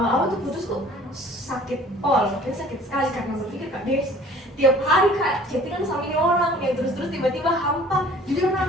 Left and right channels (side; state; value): both; normal; correlation 0.50